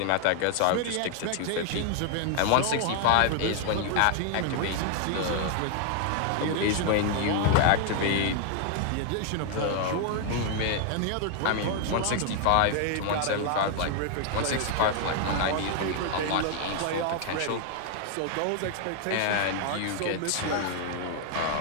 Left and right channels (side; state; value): both; different; correlation 0.00